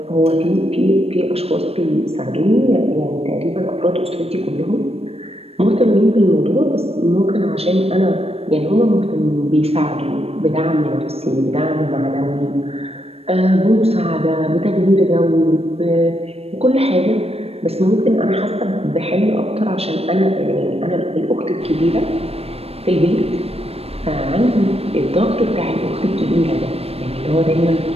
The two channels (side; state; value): left; late; 0.29 ms